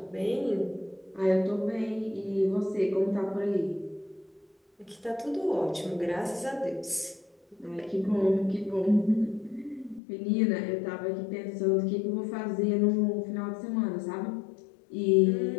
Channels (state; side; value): drops out; right; at 10.0 s